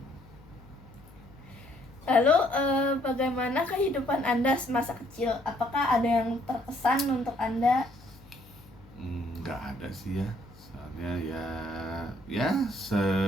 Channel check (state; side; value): noise; left; hum, 23 dB below the sound